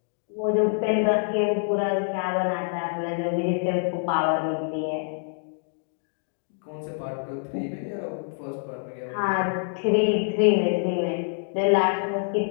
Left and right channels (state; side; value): silent; right; digital silence